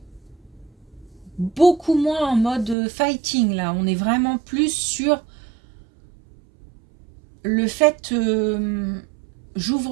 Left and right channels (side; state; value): left; drops out; at 2.8 s